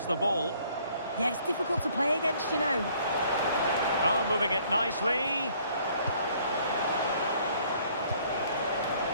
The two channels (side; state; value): both; inverted; correlation -0.61